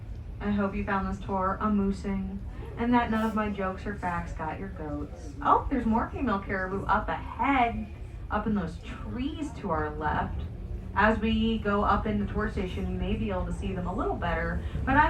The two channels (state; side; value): identical; both; correlation 1.00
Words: I hope you found this tour amusing and that none of my jokes or facts got your goats. Oh, there's more female caribou up ahead, up in those trees to our left. As we go up in the tour station, you may be able to see them a little better, but